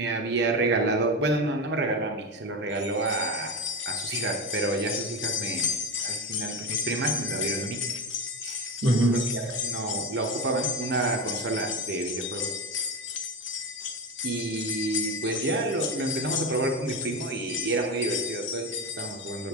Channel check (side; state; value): both; normal; correlation 0.19